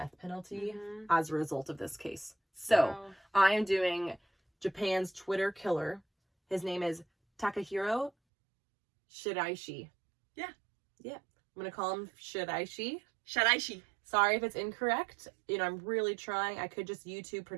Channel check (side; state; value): left; drops out; at 8.1 s